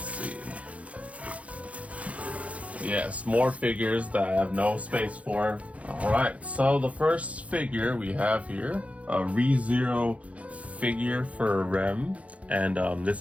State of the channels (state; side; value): late; left; 0.065 ms